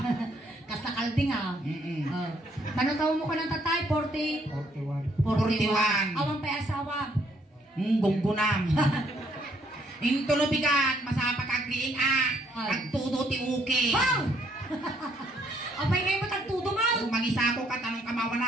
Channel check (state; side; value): normal; both; correlation 0.68